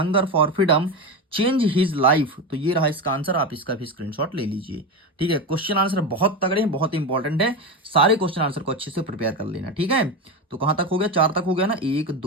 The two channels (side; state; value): both; normal; correlation 0.17